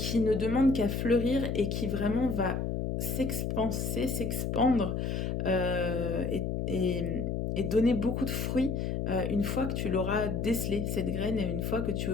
ne demande qu'à fleurir et qui vraiment va s'expanser, s'expandre et donner beaucoup de fruits une fois que tu l'auras décelé, cette graine, et une fois que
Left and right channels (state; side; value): noise; left; hum, 1 dB below the sound